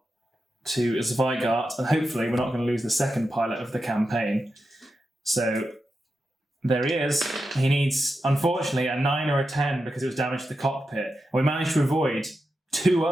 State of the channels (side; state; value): both; normal; correlation 0.89